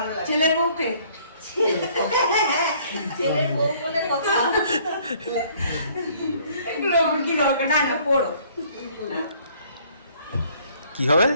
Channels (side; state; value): both; inverted; correlation -0.59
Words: লাগে। ছেলের বউকে, ছেলের বউ বলে কথা। এগুলো আমার কি দরকার? না না পড়ো। কি হবে?